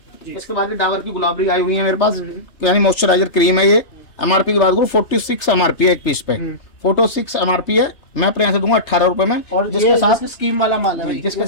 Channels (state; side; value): late; right; 3.3 ms